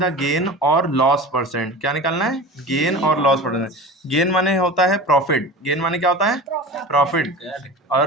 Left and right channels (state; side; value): normal; both; correlation 0.33